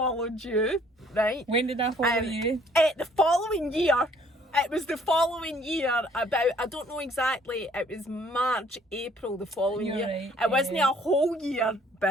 you, right? When did I follow you? The following year. It was the following year, about, I don't know exactly, it was March, April the following You're year. right, It wasn't a whole year,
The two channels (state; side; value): normal; both; correlation 0.60